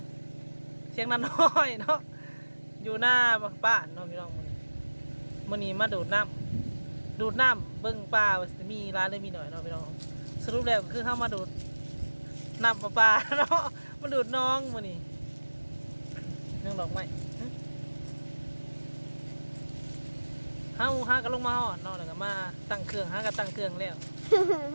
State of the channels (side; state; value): both; inverted; correlation -1.00